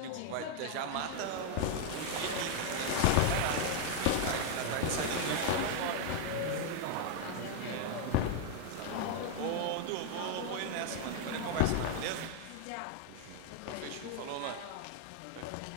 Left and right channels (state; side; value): different; both; correlation 0.00